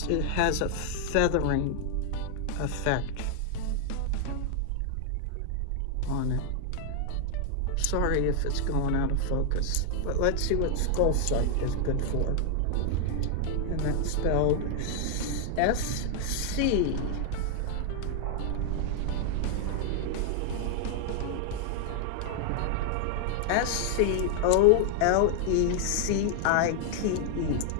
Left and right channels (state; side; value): different; both; correlation 0.00